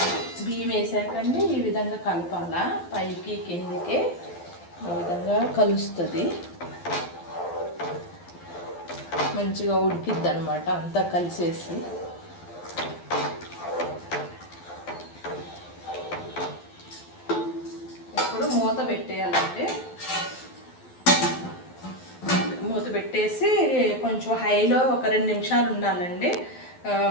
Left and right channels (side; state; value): right; late; 12 ms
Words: బియ్యం వేసాకండి ఈ విధంగా కలపాలా, పైకి కిందకి ఈ విధంగా కలుస్తుంది. మంచిగా ఉడికిద్ది అనమాట అంతా కలిసేసి. ఇప్పుడు మూత పెట్టేయాలంటే మూత పెట్టేసి కొంచెం హైలో ఒక 2 నిమిషాలు ఉండాలండి.